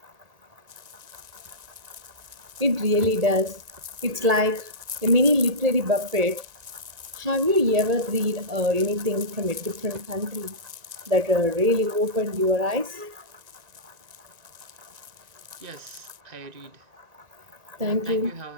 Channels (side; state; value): left; late; 1.9 ms